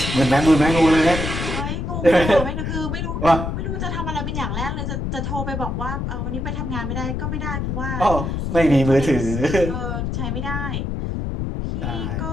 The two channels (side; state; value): left; noise; rumble, 3 dB below the sound